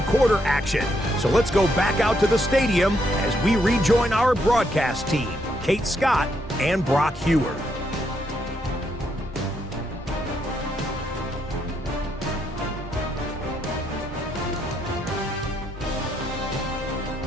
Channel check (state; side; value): normal; both; correlation 0.76